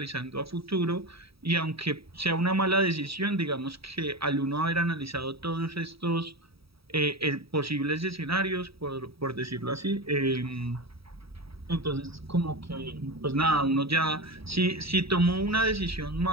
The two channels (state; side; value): late; left; 0.77 ms